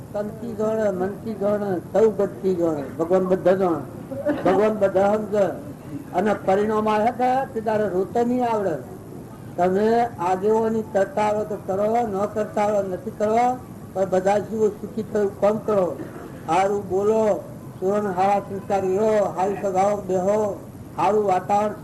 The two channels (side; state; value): both; identical; correlation 1.00